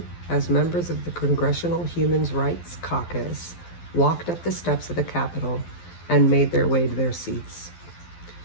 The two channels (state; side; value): late; right; 12 ms